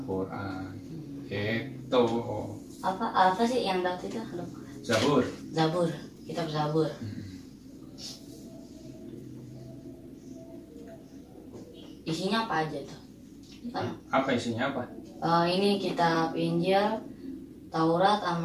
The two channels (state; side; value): identical; both; correlation 1.00